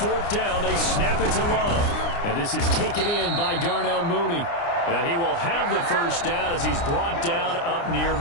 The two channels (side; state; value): right; late; 29 ms